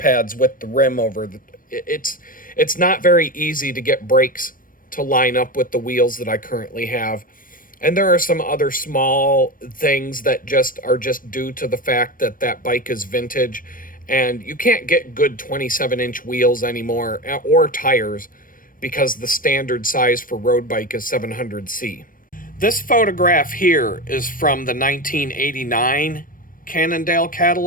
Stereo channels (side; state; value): right; late; 0.40 ms